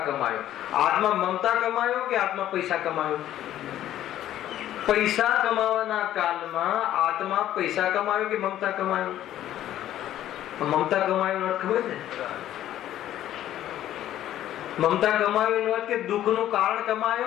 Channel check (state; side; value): quieter; right; 12.4 dB